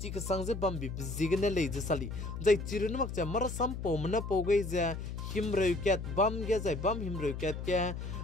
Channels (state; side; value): noise; left; hum, 6 dB below the sound